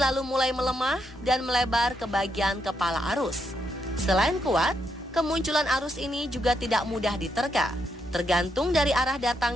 mulai melemah dan melebar ke bagian kepala arus. Selain kuat, kemunculan arus ini juga tidak mudah diterka, tergantung dari arah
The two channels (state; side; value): normal; both; correlation 0.79